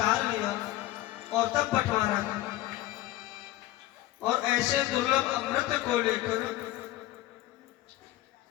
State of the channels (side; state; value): right; quieter; 15.9 dB